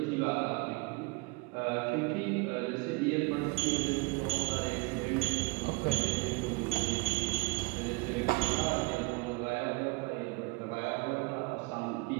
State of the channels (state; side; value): quieter; left; 25.5 dB